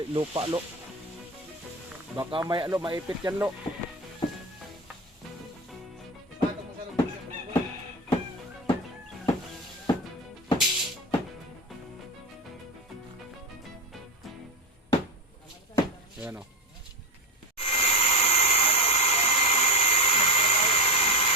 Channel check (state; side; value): normal; both; correlation 0.18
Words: lo. Baka may lo, maipit yan lo. Ayan o.